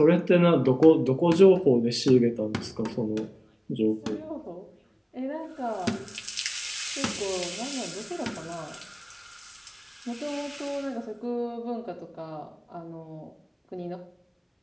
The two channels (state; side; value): identical; both; correlation 1.00